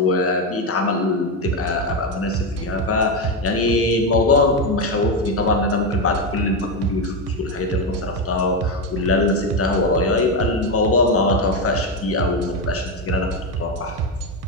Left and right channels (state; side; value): normal; both; correlation 0.10